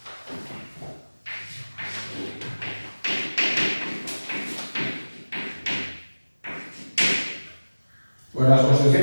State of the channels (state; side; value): inverted; both; correlation -1.00